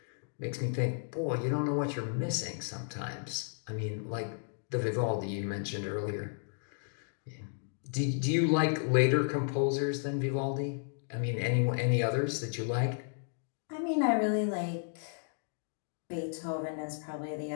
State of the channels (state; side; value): silent; right; digital silence